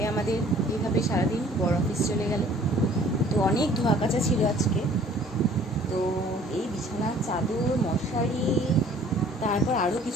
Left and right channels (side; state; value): both; normal; correlation 0.54